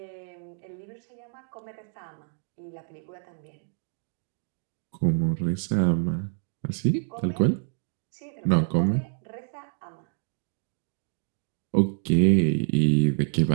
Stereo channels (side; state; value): left; silent; digital silence